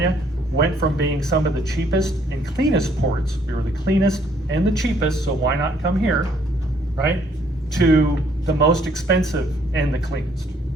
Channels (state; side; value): normal; both; correlation 0.65